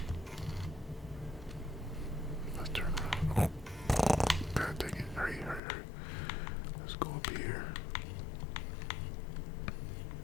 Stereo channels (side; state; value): right; drops out; at 5.6 s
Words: Let's turn around. Oh, God dang it. Hurry. Let's go up here.